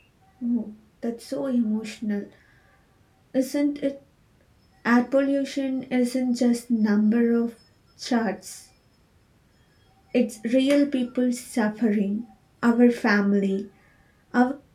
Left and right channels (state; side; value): identical; both; correlation 1.00